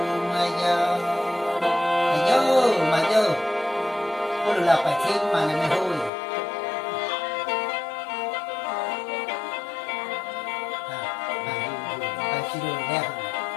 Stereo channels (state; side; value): drops out; right; at 6.1 s